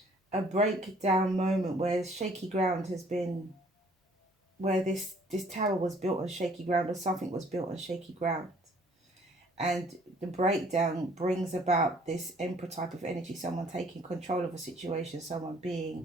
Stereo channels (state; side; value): normal; both; correlation 0.58